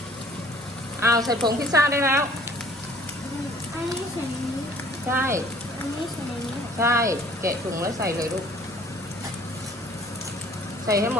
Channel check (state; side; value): normal; both; correlation 0.53